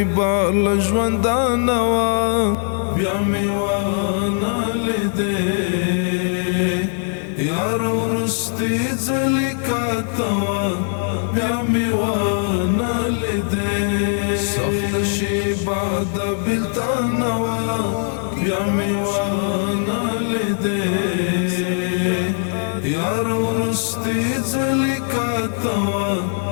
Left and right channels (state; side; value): silent; right; 66 dB below the other